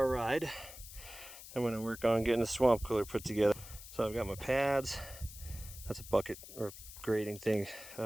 ride. I'm gonna work on getting the swamp cooler put together. So I've got my pads. That's a bucket or grading thing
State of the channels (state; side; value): noise; left; hiss, 14 dB below the sound